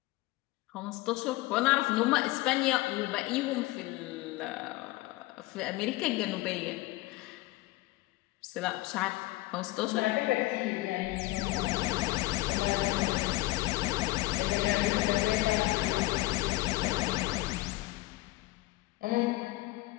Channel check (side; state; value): right; quieter; 19.1 dB